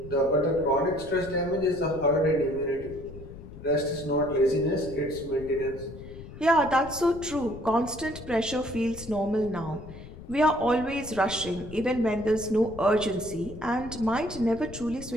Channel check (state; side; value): noise; left; rumble, 14 dB below the sound